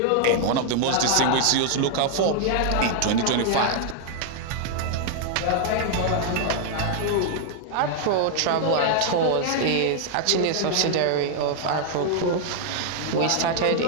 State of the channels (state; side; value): different; both; correlation 0.00